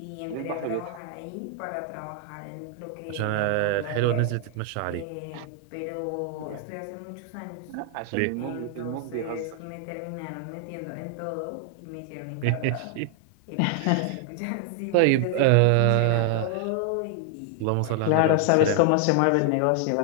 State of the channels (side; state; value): both; different; correlation 0.00